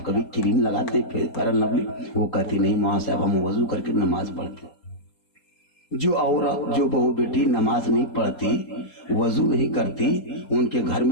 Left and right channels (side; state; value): right; late; 4.3 ms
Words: कभी क्रीम लगाते हैं फेयर लवली? वो कहती नहीं माँ साहब, हम वजू करके नमाज पढ़ते। जो औरत, जो बहू बेटी नमाज नहीं पढ़ती, वजू नहीं करती, उनके घर